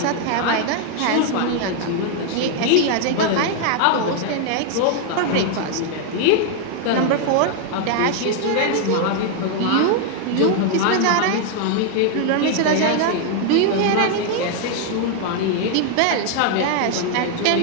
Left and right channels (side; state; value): both; different; correlation 0.00